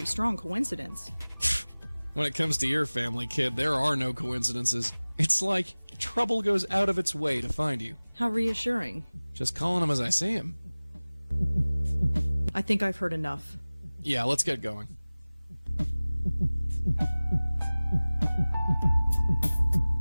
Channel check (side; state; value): both; inverted; correlation -1.00